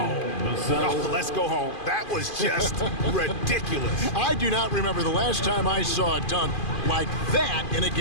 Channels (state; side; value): late; right; 2.5 ms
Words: Oh, let's go home. That was just ridiculous. I do not remember the last time I saw a dunk like that in a